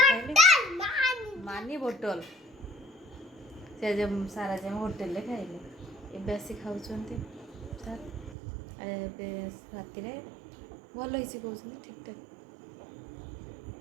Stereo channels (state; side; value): drops out; left; at 8.3 s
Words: मानी बोतल से सार आज होटेल खाइले एबे आसी खाऊँ सार राति भल ही कहते ठीक ठाक